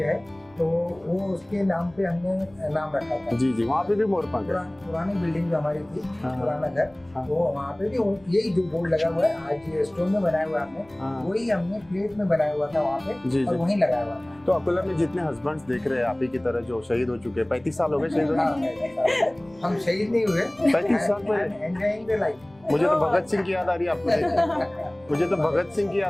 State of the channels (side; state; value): left; noise; rumble, 29 dB below the sound